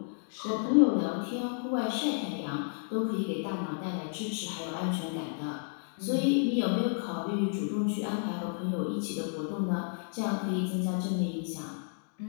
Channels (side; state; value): right; silent; 57 dB below the other